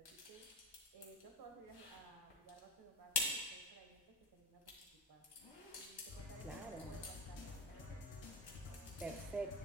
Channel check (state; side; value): normal; both; correlation 0.20